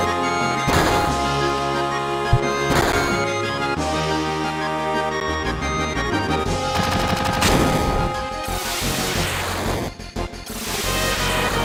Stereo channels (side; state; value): both; identical; correlation 1.00